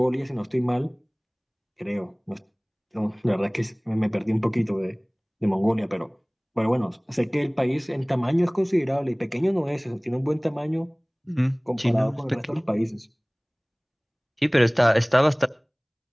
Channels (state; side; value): identical; both; correlation 1.00